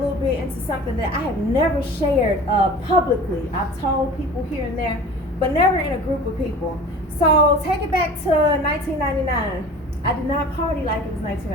bit into something that I have never shared publicly. I've told people here and there, but never in a group of people. So take it back to 1999. I did not party like it was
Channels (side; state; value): both; normal; correlation 0.40